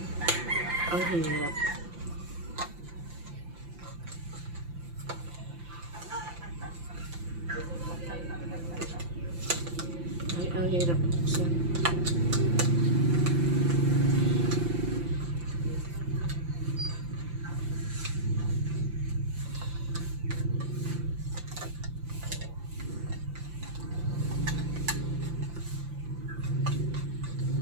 ang hirap. Ay, ang hirap buksan.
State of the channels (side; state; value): left; late; 5.8 ms